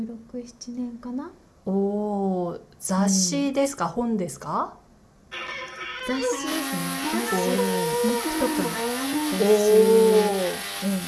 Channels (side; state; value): both; identical; correlation 1.00